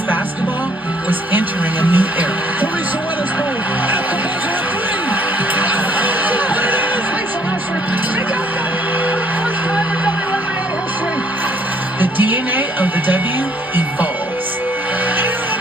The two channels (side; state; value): both; normal; correlation 0.64